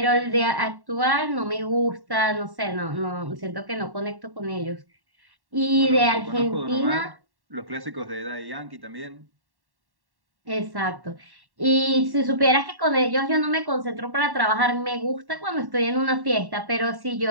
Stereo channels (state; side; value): late; left; 1.1 ms